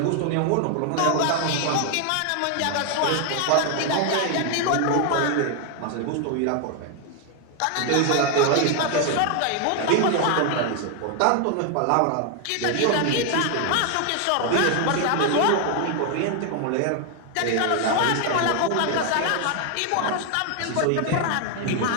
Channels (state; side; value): different; both; correlation 0.00